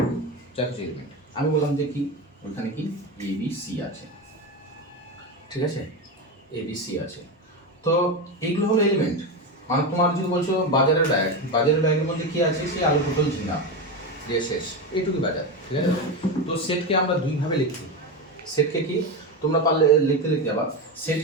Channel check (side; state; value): both; normal; correlation 0.17